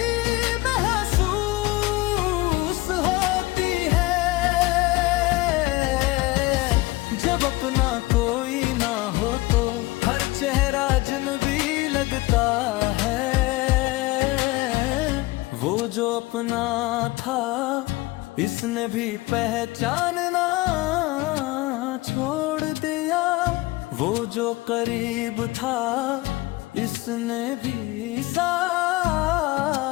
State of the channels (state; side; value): quieter; right; 20.6 dB